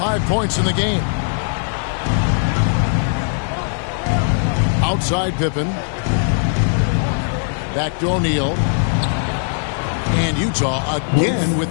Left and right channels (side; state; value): right; silent; digital silence